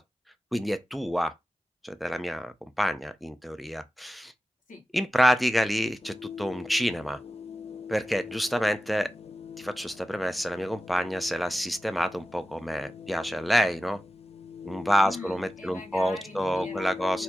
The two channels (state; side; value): normal; both; correlation 0.94